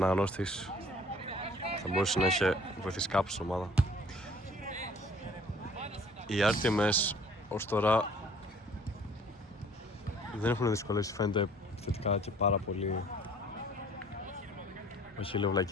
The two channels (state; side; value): normal; both; correlation 0.54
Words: θα μπορούσε να είχε βοηθήσει κάπου στην ομάδα. Οι RTMS ως τώρα δεν έχουν δυσκολεύσει, φαίνεται θετικά και πάρα πολύ. Όχι λέω